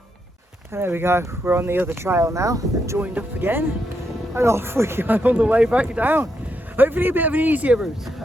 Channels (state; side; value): normal; both; correlation 0.81